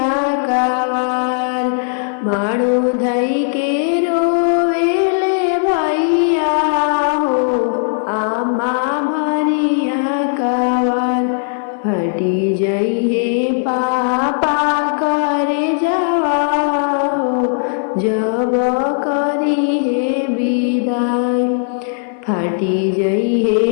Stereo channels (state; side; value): silent; right; 59 dB below the other